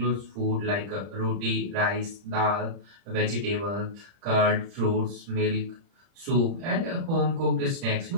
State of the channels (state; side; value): late; left; 30 ms